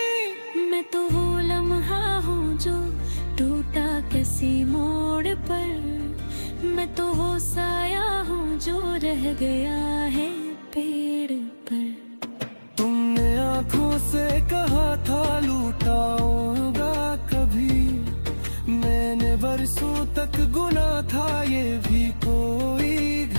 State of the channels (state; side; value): inverted; both; correlation -1.00